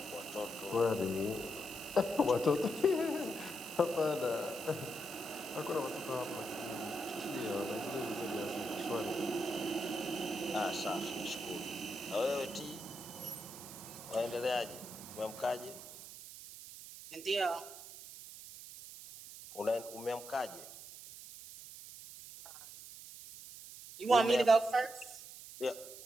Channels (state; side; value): noise; right; hiss, 13 dB below the sound